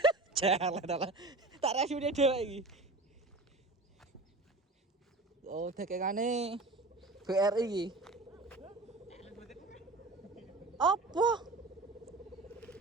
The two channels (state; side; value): quieter; left; 3.1 dB